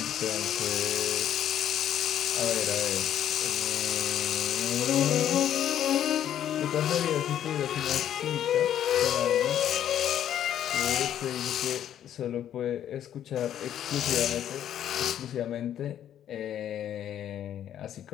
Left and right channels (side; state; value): right; quieter; 10.6 dB